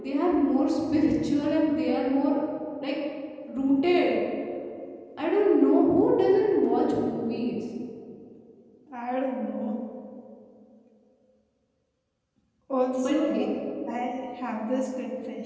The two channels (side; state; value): both; identical; correlation 1.00